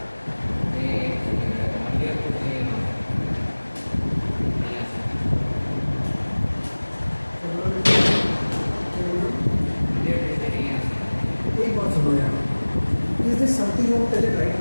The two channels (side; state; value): both; inverted; correlation -1.00